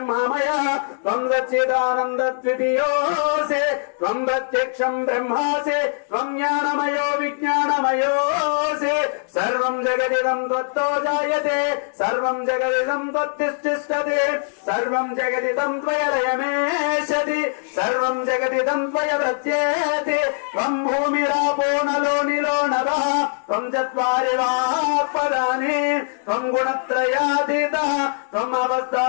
త్వం సచ్చిదానందద్వితీయోసి త్వం ప్రత్యక్షం బ్రహ్మాసి త్వం జ్ఞానమయో విజ్ఞానమయోసి. సర్వం జగదిదం త్వత్తో జాయతే సర్వం జగదిదం త్వత్తిష్ఠిష్టతే సర్వం జగదిదం త్వయ లయమేషతి సర్వం జగదిదం త్వయ ప్రత్యేతి. త్వం భూమిరాపో నలో నిలో నభః త్వం చత్వారి వాక్పదాని త్వం గుణత్రయాతీతః త్వం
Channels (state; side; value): silent; right; digital silence